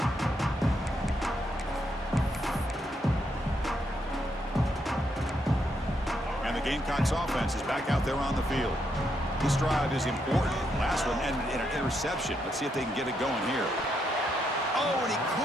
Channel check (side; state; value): both; normal; correlation 0.78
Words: And the Gamecocks offense is back out there on the field. This drive is important. Last one ended in an interception. Let's see if they can get it going here. Oh, and he